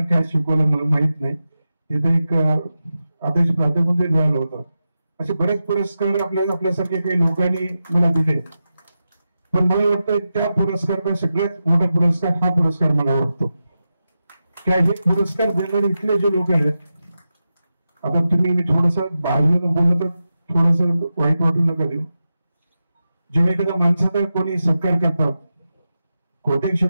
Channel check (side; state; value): both; inverted; correlation -0.91